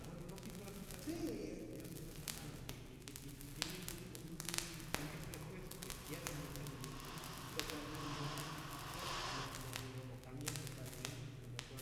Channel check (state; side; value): identical; both; correlation 1.00